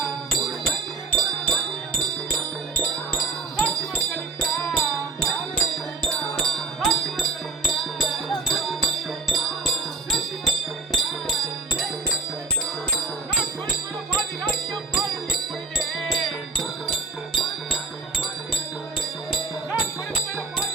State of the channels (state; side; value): quieter; left; 3.9 dB